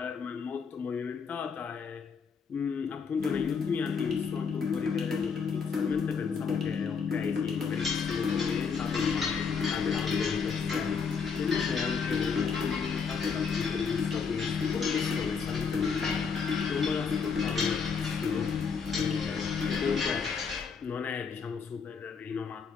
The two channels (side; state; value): right; quieter; 5.8 dB